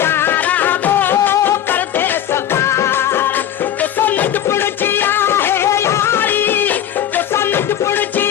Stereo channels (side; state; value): right; quieter; 10.6 dB